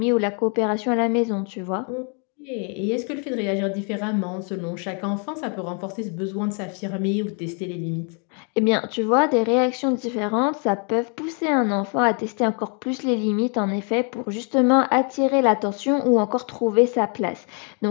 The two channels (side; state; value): right; quieter; 38.7 dB